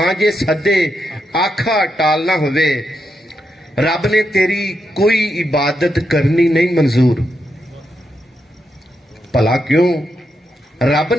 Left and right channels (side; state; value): both; normal; correlation 0.83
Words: ਜੇ ਸੱਦੇ ਆਖਾ ਟਾਲਣਾ ਹੋਵੇ। ਰੱਬ ਨੇ ਤੇਰੀ ਕੋਈ ਇਬਾਦਤ ਕਰਨੀ ਨਹੀਂ ਮਨਜ਼ੂਰ। ਭਲਾ ਕਿਉਂ? ਰੱਬ